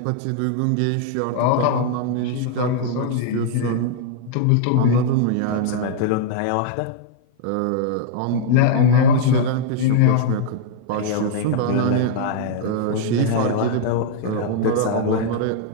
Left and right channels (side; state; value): both; different; correlation -0.01